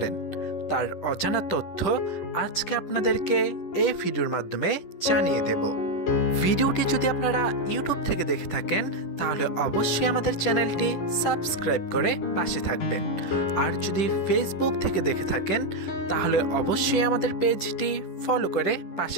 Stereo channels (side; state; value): right; late; 10 ms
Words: তার অজানা তথ্য আজকে আপনাদেরকে এই ভিডিওর মাধ্যমে জানিয়ে দেব। ভিডিওটি যদি আপনারা ইউটিউব থেকে দেখে থাকেন তাহলে অবশ্যই আমাদের চ্যানেলটি সাবস্ক্রাইব করে পাশে থাকবেন, আর যদি ফেসবুক থেকে দেখে থাকেন তাহলে অবশ্যই আমাদের পেজটি ফলো করে